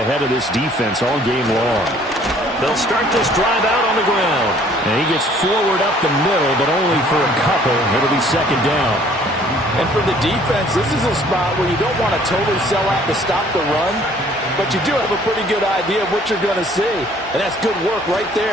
of this defense all game long. They'll start this drive out on the ground. And he gets forward up the middle, but only for a couple. It'll be second down. And for the defense, this is a spot where you don't want to totally sell out to stop the run, but you do have a pretty good idea of what you're going to see. And that's good work right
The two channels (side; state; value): both; normal; correlation 0.57